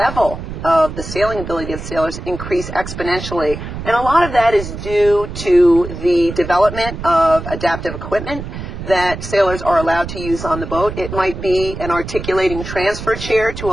of the sailing ability of sailors increase exponentially, and a lot of that is due to the development of adaptive equipment that sailors are allowed to use on the boat. It might be an articulating transfer chair to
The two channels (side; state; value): right; noise; rumble, 9 dB below the sound